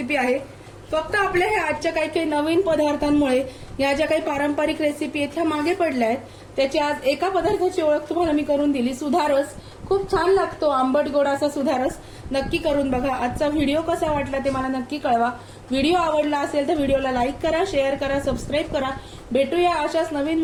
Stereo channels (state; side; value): identical; both; correlation 1.00